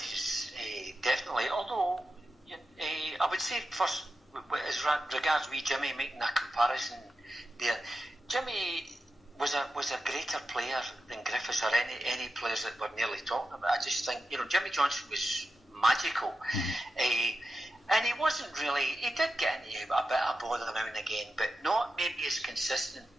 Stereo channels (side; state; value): both; normal; correlation 0.90